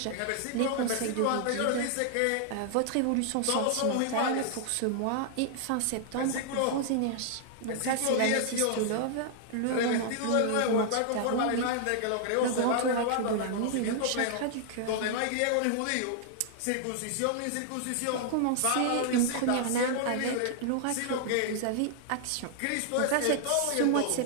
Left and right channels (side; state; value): both; different; correlation -0.01